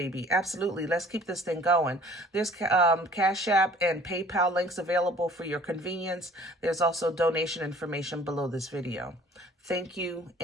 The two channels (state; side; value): normal; both; correlation 0.52